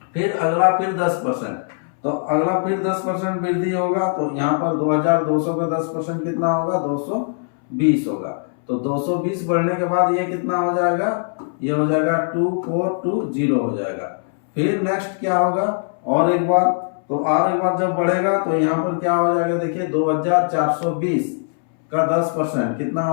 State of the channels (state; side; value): silent; right; 65 dB below the other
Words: फिर अगला फिर 10%, तो अगला फिर 10% वृद्धि होगा, तो यहाँ पर 2200 का 10% कितना होगा 220 होगा। तो 220 बढ़ने के बाद ये कितना हो जाएगा, ये हो जाएगा 2420 हो जाएगा। फिर नेक्स्ट क्या होगा, और एक बार, तो और एक बार जब बढ़ेगा तो यहाँ पर क्या हो जाएगा, देखिए 2420 का 10% कितना